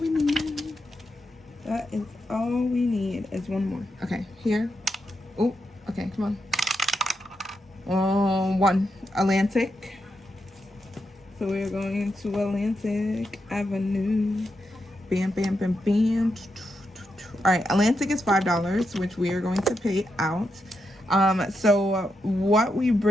need. That is all we need is one more. Okay, here. Oh, okay, come on. 1. Atlantic. So we're going to Atlantic Avenue. Bam, bam, bam, bam. All right, Atlantic is $5, which we are going to pay out. So what we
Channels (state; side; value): normal; both; correlation 0.84